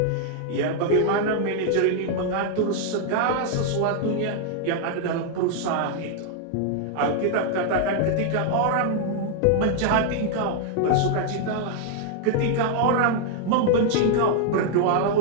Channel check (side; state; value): both; different; correlation 0.00